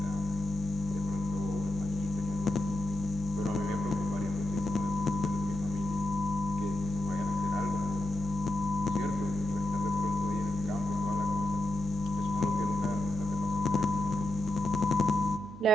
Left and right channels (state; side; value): normal; both; correlation 0.86